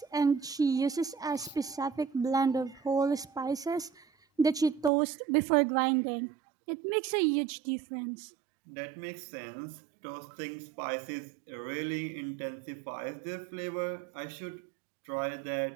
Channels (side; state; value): left; drops out; at 4.9 s